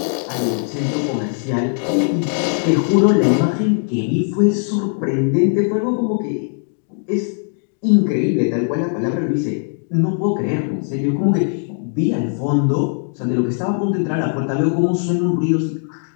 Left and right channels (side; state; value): right; silent; 55 dB below the other